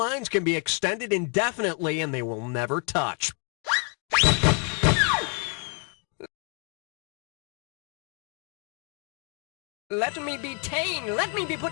can be extended indefinitely and they will never touch. Let me be ta'en, let me be put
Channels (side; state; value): right; quieter; 35.8 dB